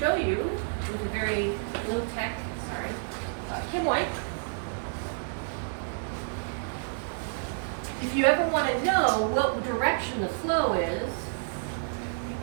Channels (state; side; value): silent; left; digital silence